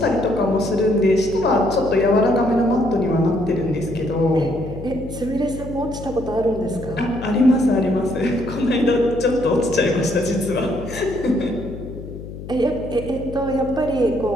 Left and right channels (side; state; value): left; noise; hum, 11 dB below the sound